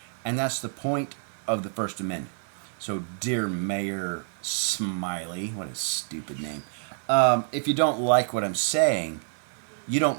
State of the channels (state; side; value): silent; left; digital silence